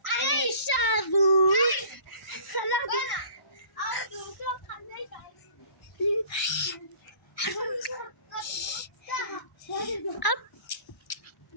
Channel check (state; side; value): late; right; 1.0 ms